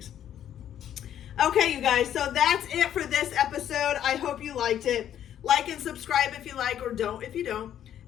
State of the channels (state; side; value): quieter; right; 10.4 dB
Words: Okay, you guys, so that's it for this episode. I hope you liked it. Like and subscribe if you like, or don't if you don't.